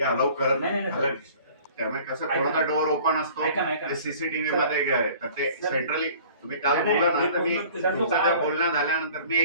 अलाउ करत नाही. त्यामुळे कसं कोणाचा डोर ओपन असतो ते CCTV मध्ये, तर ते सेंट्रली तुम्ही काल बोला ना, तर मी तुमचं त्या बोलणं झाल्यानंतर मी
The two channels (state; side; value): inverted; both; correlation -0.49